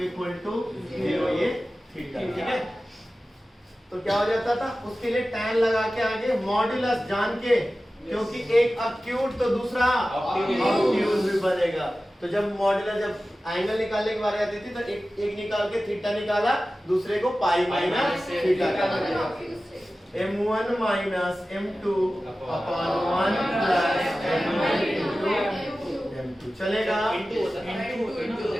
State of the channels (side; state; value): both; normal; correlation 0.95